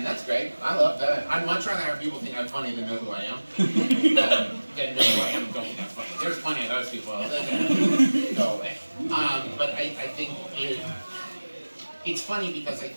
that's great. I love that. I'd much rather have people think I'm funny than know who I am. Than know who I am and don't think I'm funny. There's plenty of those people. Go away. But I think it's funny because I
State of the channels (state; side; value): inverted; both; correlation -1.00